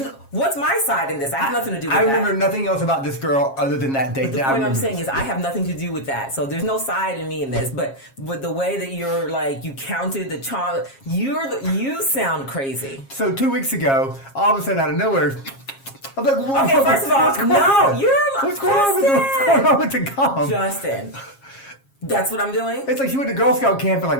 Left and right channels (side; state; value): right; late; 7.4 ms